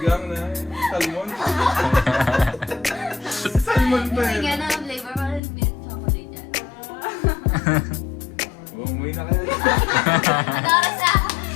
na. Salmon. Salmon pa Kasi yun. nga na ang flavor, parang milk chocolate yan. Umuwi na kayo. Para sa,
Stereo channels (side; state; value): right; drops out; at 5.4 s